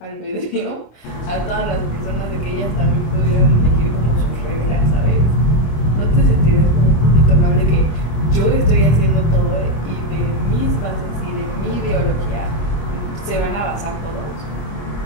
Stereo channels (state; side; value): late; right; 25 ms